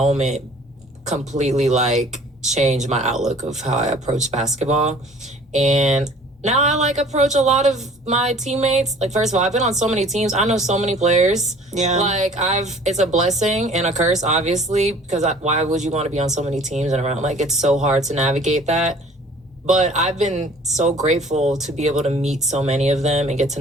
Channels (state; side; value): normal; both; correlation 0.50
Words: completely like changed my outlook of how I approach basketball. And now I like approach a lot of my teammates. Like, first of all, I've been on so many teams. I know so many players. Yeah. Like, it's a blessing and a curse, obviously, because why would you want to be on so many teams and around? Like, it's so hard to navigate that. But I've been so grateful to be able to meet so many of them and get to